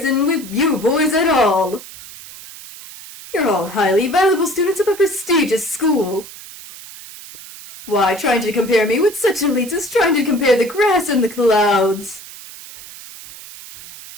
with you boys at all. You're all highly valuable students of a prestigious school. Why, trying to compare me with such elites is trying to compare the grass and the clouds.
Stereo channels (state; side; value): noise; right; hiss, 16 dB below the sound